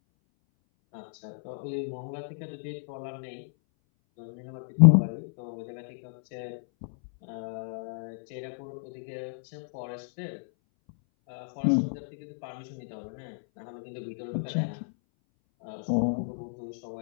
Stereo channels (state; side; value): silent; right; 57 dB below the other